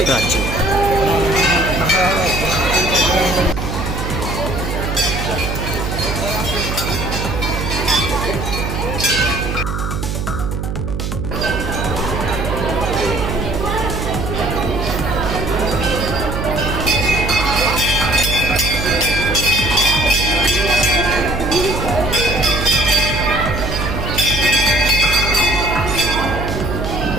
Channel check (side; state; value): right; noise; hum, 3 dB below the sound